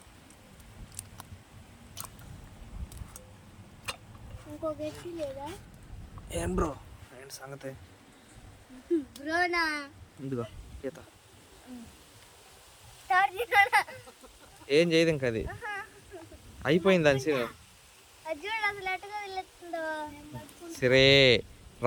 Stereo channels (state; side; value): identical; both; correlation 1.00